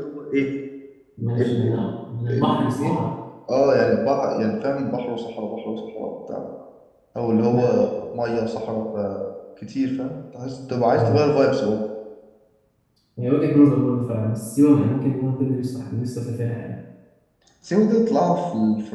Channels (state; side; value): identical; both; correlation 1.00